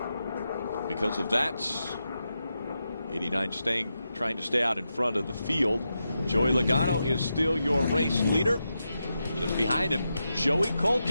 Because of that, 89 trying to stay out in front of the field. Joey Logano is still your race leader. Just behind him, Joey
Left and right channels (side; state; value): both; inverted; correlation -0.88